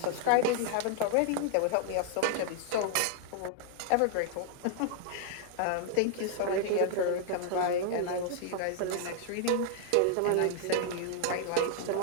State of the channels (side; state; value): both; different; correlation 0.00